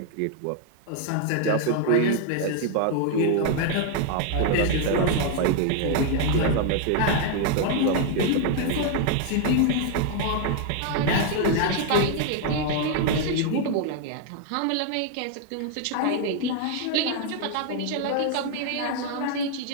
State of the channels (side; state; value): both; different; correlation 0.00